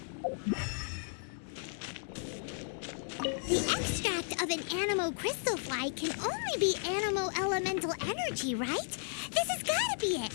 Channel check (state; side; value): silent; right; digital silence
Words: The extract of an animal crystal fly can only be animal elemental energy, right? This has gotta be it.